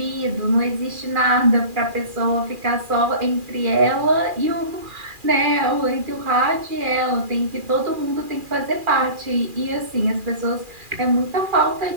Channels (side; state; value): left; late; 2.4 ms